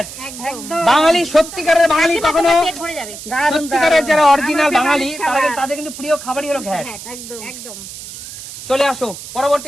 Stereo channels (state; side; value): noise; right; hiss, 12 dB below the sound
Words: একদম বাঙালি সত্যিকারের বাঙালি কখনো, পেট ভরে যাবে সত্যিকারের যারা অরিজিনাল বাঙালি তাদের কিন্তু প্রিয় খাবারই হলো ঘ্যাট। একদম একদম চলে আসো পরবর্তী